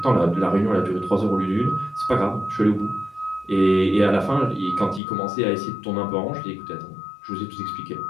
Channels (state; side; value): drops out; right; at 5.0 s